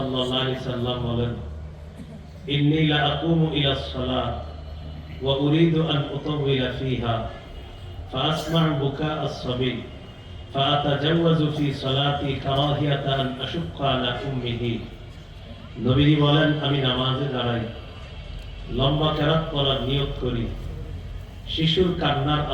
আলাইহি সাল্লাম বলেন, ইন্নী লা আকুমু ইলাস সালাত ওয়া উরিদু আন উতাওয়িলা ফিহা ফাআসমা'ু বুকা আস-সাবী ফাআতাজাওয়াজু ফি সালাতি কারাহিয়াতা আন আশুক্কা আলা উম্মিহি। নবীজি বলেন, আমি নামাজে দাঁড়াই, লম্বা কেরাত পড়ার নিয়ত করি। শিশুর কান্নার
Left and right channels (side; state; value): both; identical; correlation 1.00